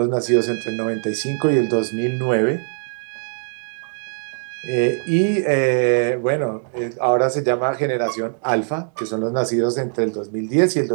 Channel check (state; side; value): silent; left; 58 dB below the other